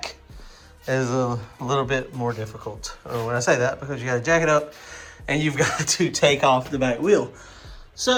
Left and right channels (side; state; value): both; identical; correlation 1.00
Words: is a little bit more difficult. When I say that, because you got to jack it up and you've got to take off the back wheel.